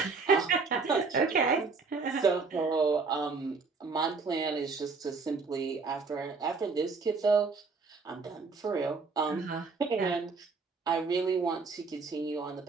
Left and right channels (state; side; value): quieter; left; 4.5 dB